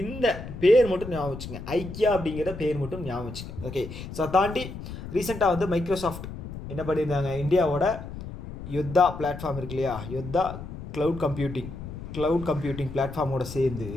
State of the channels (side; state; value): left; noise; rumble, 10 dB below the sound